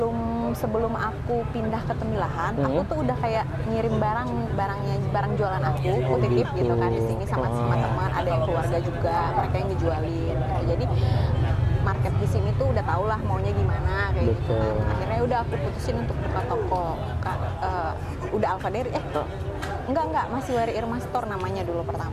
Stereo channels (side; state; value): both; identical; correlation 1.00